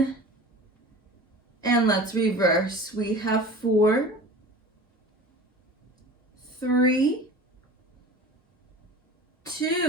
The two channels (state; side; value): normal; both; correlation 0.38